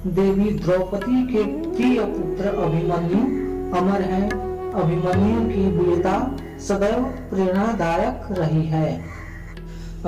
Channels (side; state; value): both; identical; correlation 1.00